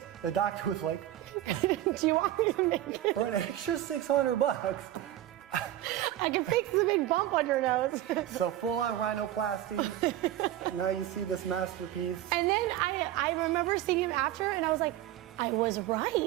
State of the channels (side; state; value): left; quieter; 13.2 dB